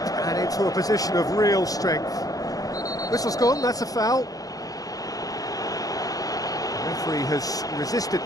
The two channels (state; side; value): late; right; 0.17 ms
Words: and into a position of real strength. Whistle's gone, that's a foul. The referee has resisted